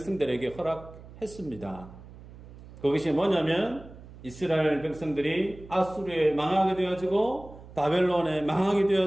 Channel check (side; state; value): right; noise; hum, 18 dB below the sound